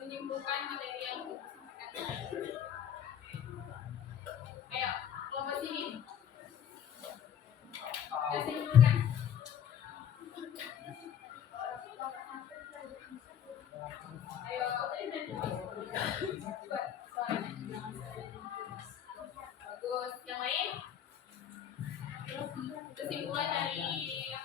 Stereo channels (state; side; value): quieter; right; 9.3 dB